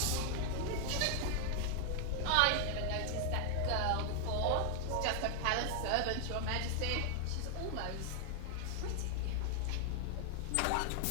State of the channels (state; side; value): different; both; correlation 0.00